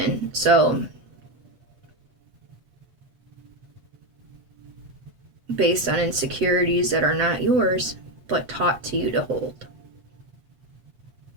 So based on insecurities that are not yours, but taught to you to hold.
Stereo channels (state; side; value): late; left; 8.0 ms